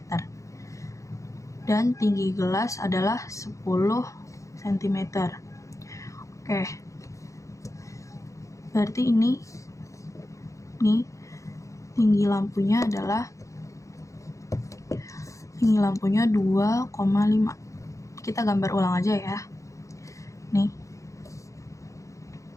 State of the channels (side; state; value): right; late; 0.15 ms